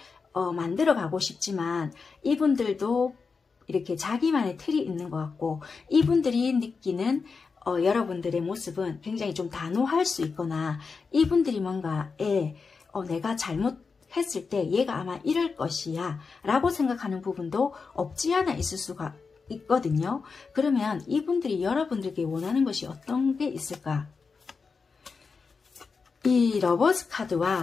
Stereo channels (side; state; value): right; quieter; 4.9 dB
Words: 만들어 가고 싶지만 이분들도 이렇게 자기만의 틀이 있는 것 같고 이분들이 느끼는 여러분들의 모습은 굉장히 좀 단호할 수 있거나 이분들이 뭔가 내가 잘못했을 때 얘가 아마 이럴 것이야 라고 생각하는 부분도 없지 않아 있을 수가 있거든요. 그러면 이분들이 여러분들에게 원하는 것이 어떤 게 있을까? 이 러버스